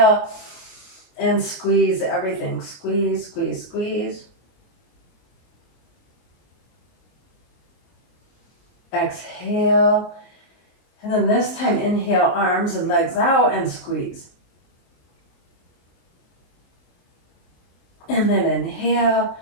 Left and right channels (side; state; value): right; late; 23 ms